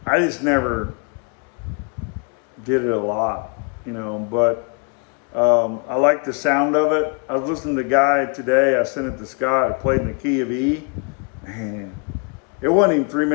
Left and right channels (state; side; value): quieter; right; 35.5 dB